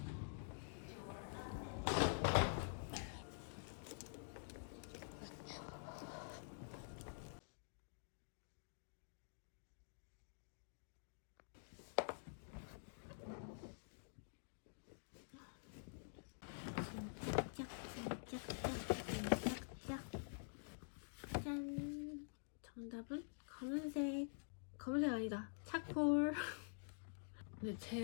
짠. 정답은 검은색. 검은색 아니다. 차콜. 근데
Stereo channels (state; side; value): silent; right; digital silence